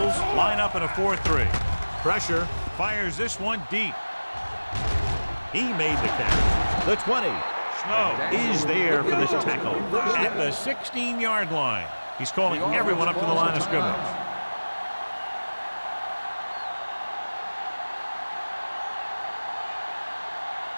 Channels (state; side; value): inverted; both; correlation -1.00